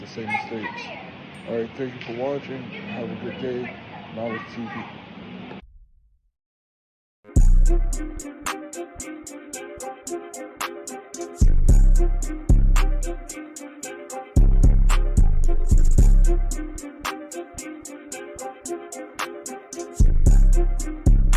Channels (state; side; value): identical; both; correlation 1.00